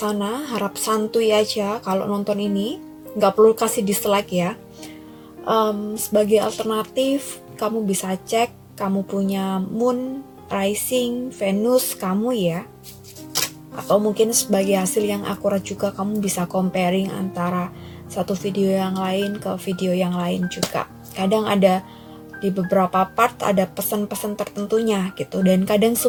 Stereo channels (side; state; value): both; identical; correlation 1.00